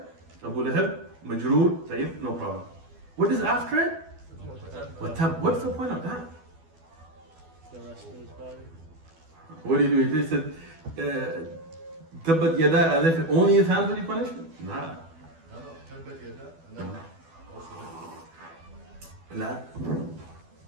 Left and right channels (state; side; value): late; left; 12 ms